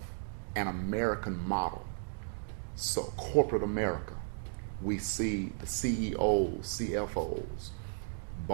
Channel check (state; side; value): silent; left; digital silence